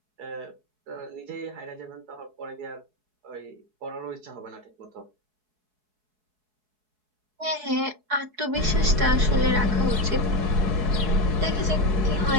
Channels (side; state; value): left; late; 4.7 ms